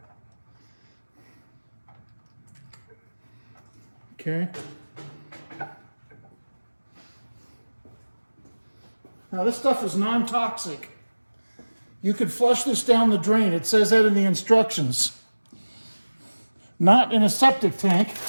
Okay. Now this stuff is non-toxic. You could flush this down the drain. It says that in the instructions. Not in a septic tank,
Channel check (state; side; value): inverted; both; correlation -1.00